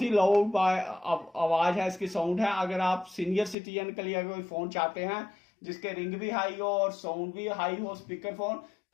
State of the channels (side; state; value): right; drops out; at 3.6 s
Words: ही लाउड आवाज है, इसकी साउंड है। अगर आप सीनियर सिटीजन के लिए अगर कोई फोन चाहते हैं जिसके रिंग भी हाई हो और साउंड भी हाई हो, स्पीकर फोन,